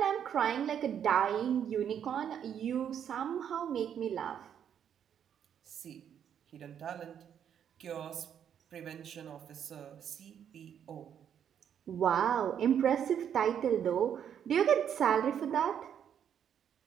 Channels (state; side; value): quieter; left; 8.8 dB